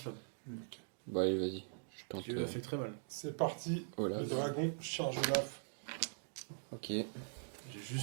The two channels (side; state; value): left; silent; digital silence